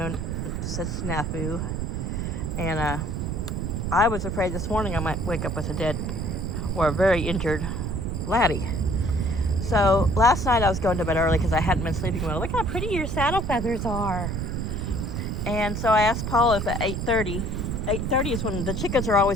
said snafu, and I was afraid this morning I might wake up with a dead or a very injured Laddie. So last night I was going to bed early because I hadn't been sleeping well. Look how pretty your saddle feathers are. And so I asked Paul if at 8:30 is when the chickens are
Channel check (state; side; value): noise; right; rumble, 2 dB below the sound